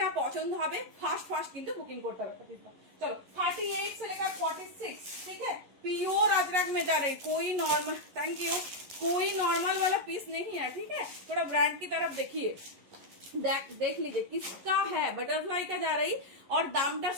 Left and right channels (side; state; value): left; late; 11 ms